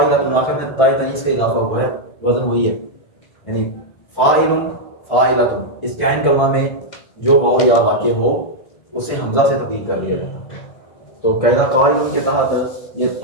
آخر میں تائے تنیس سے اضافہ ہوا ہے، وزن وہی ہے، یعنی فاعل فاعلۃ، اس کے عین کلمہ میں جو واو یا واقع ہو اسے حمزہ سے تبدیل کر دیا جاتا ہے. تو قاعدہ قائل کے تحت یہ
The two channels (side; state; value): right; late; 1.5 ms